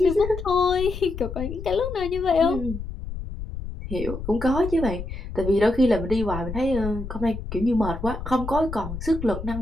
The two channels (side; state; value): left; noise; rumble, 8 dB below the sound